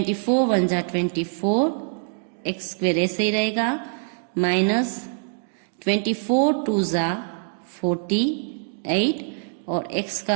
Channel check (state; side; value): silent; left; 58 dB below the other